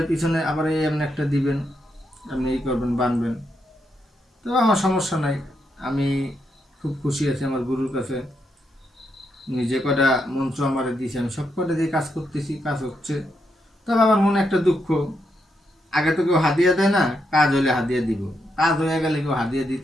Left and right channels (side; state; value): both; normal; correlation 0.81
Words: পিছনে আবার এই এমনি একটা দিবেন, আপনি এই করবেন, বাঁধবেন। তো আমার সমস্যা নাই, আমি খুব খুশি আছি আমার গুরুর কাছে। উনি যে কটা মন্ত্র আমার দিয়েছে, আমি সব কটা দিয়ে কাজ করতেছি, কাজ হচ্ছে। তবে আমার মনে একটা দুঃখ, আগে তো কেউ হাদিয়া দেয় না, কাজ হলে হাদিয়া দিব, কাজ হয়ে গেলে কেউ হাদিয়া